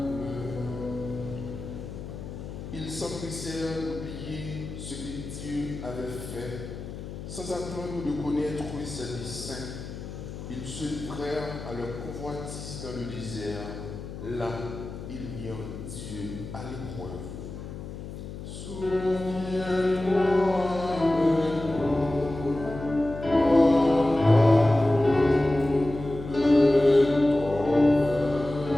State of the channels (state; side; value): noise; left; hum, 10 dB below the sound